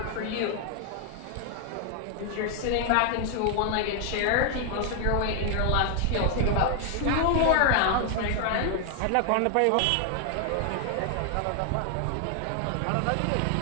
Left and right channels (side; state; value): both; different; correlation 0.00